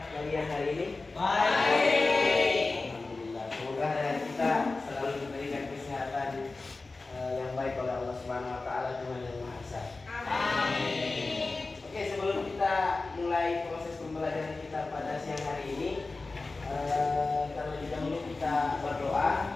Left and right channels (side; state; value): right; quieter; 3.6 dB